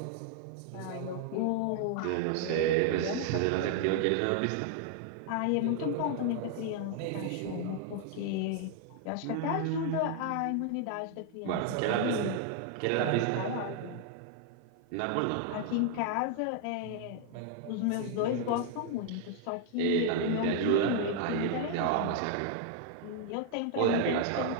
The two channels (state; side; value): different; both; correlation 0.00